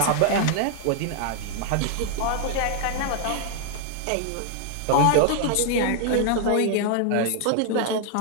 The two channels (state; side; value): different; both; correlation 0.00